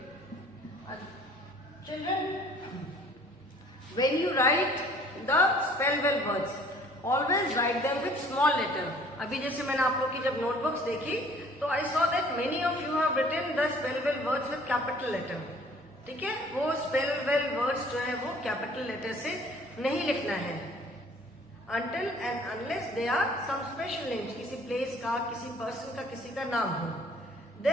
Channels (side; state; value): both; normal; correlation 0.54